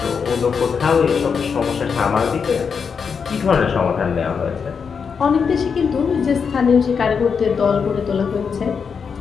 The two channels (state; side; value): quieter; right; 6.1 dB